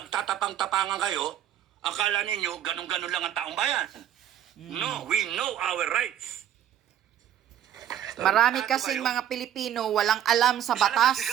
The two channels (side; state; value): left; quieter; 10.8 dB